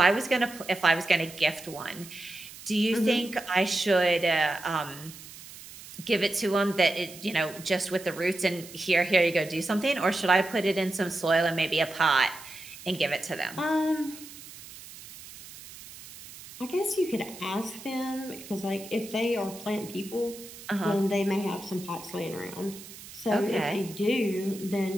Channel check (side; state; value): right; noise; hiss, 16 dB below the sound